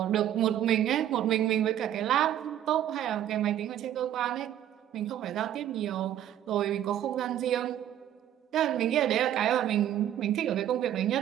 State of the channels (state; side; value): quieter; left; 11.2 dB